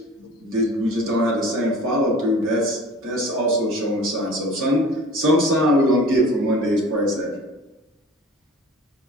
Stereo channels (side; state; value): both; normal; correlation 0.43